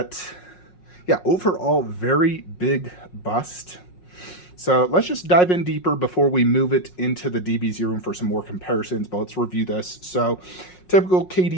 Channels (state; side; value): late; right; 5.5 ms